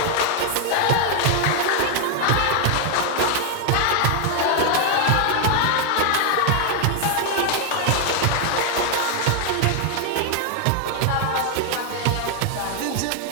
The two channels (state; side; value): different; both; correlation 0.00